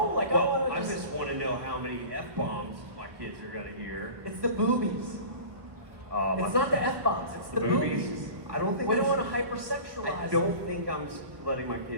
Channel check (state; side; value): late; left; 1.1 ms